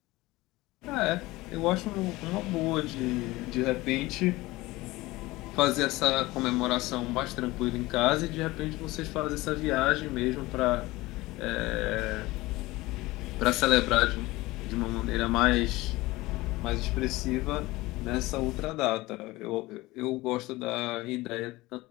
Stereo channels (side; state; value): right; quieter; 19.9 dB